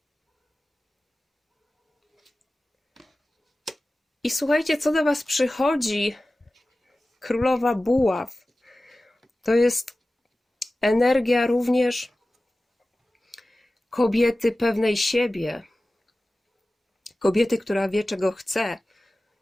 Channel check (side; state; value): both; normal; correlation 0.96